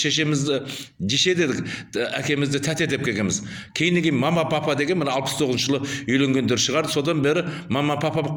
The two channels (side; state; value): both; identical; correlation 1.00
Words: жеше дедік, әкемізді тәте деп келгенбіз. Кейіннен мама папа деген мына 69 жылы үйленгендер шығар. Содан бері мама папа